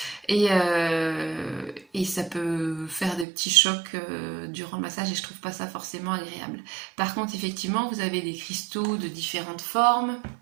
et ça peut faire des petits chocs durant le massage, et je trouve pas ça forcément agréable. Par contre, effectivement, vous avez des cristaux de différentes formes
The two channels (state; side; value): drops out; left; at 3.2 s